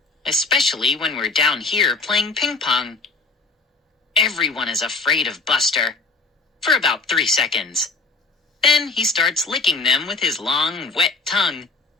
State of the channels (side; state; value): right; quieter; 3.7 dB